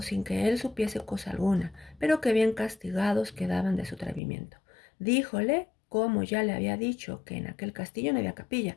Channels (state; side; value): drops out; right; at 4.2 s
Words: sin que él supiese cosa alguna, pero que bien castigados quedaban de su atrevimiento. Díjole como ya le había dicho que en aquel castillo no había capilla,